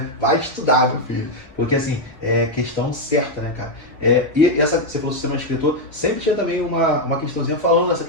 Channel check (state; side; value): late; right; 2.0 ms